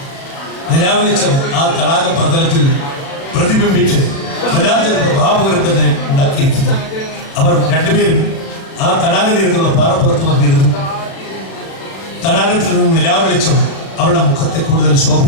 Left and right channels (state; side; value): late; right; 36 ms